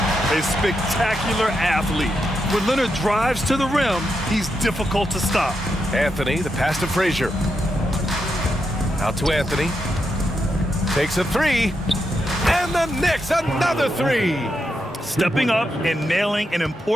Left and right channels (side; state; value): both; normal; correlation 0.84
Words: A spectacular athlete. When Leonard drives to the rim, he's difficult to stop. Anthony, the pass to Frazier. Out to Anthony. Takes a three. And the Knicks, another three. Stepping up and nailing an